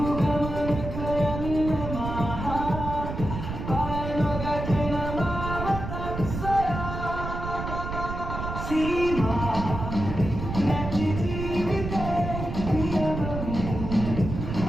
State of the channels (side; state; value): right; noise; rumble, 6 dB below the sound